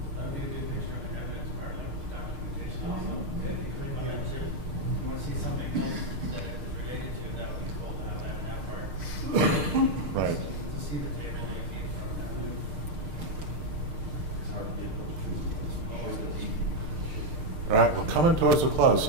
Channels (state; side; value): late; left; 6.6 ms